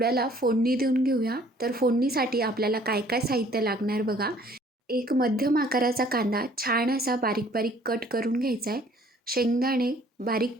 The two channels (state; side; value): normal; both; correlation 0.57